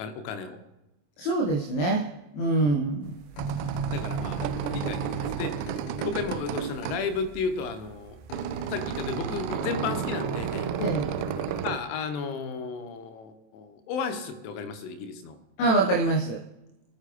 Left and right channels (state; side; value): late; right; 27 ms